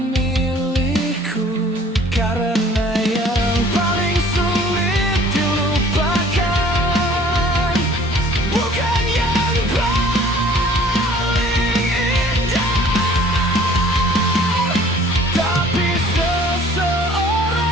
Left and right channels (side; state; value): both; normal; correlation 0.53